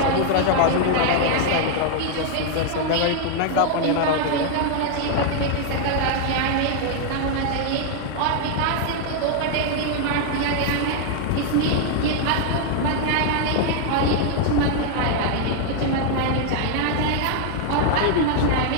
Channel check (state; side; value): different; both; correlation 0.00